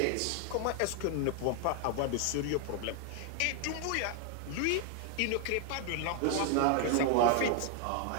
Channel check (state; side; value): different; both; correlation 0.00